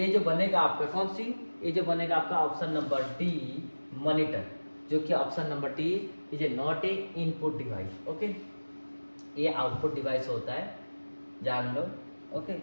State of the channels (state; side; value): inverted; both; correlation -1.00